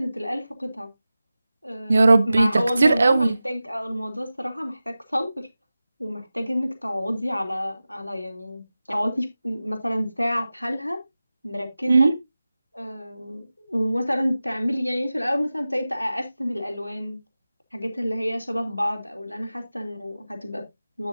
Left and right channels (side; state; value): both; inverted; correlation -0.95